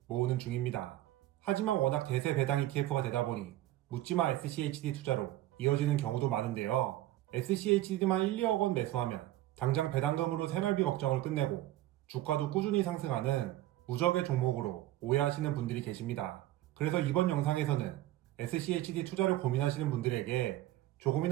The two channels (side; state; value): left; quieter; 15.0 dB